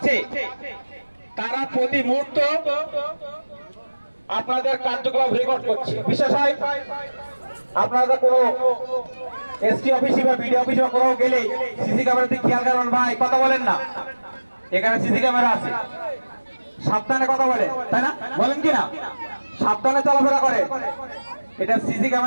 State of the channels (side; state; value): both; inverted; correlation -1.00